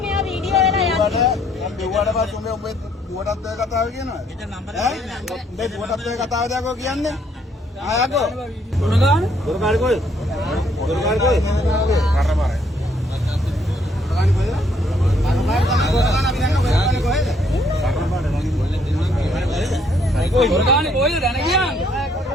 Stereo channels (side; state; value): both; normal; correlation 0.68